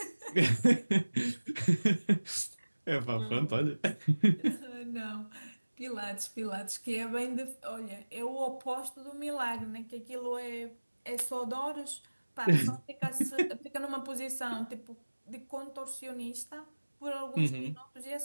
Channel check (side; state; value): both; inverted; correlation -1.00